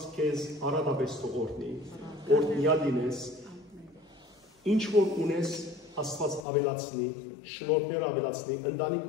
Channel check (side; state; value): right; drops out; at 6.5 s